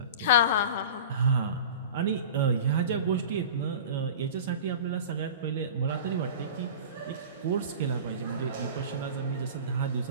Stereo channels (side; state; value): both; inverted; correlation -0.35